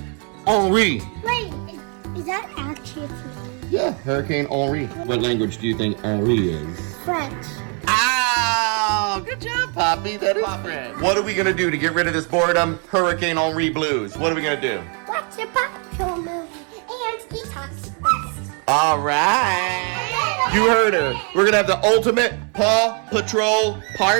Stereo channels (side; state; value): left; quieter; 37.9 dB